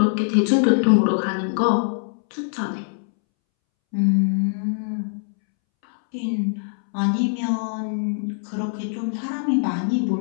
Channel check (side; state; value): right; silent; 64 dB below the other